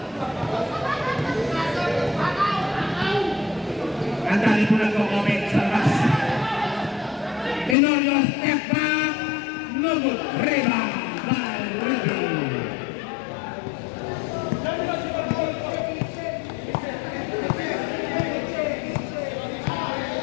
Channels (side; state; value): right; drops out; at 7.8 s